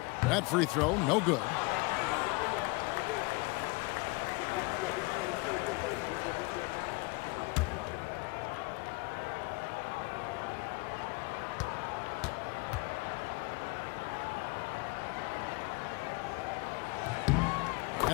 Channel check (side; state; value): right; quieter; 26.6 dB